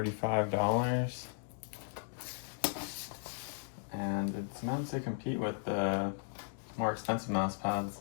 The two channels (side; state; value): right; silent; digital silence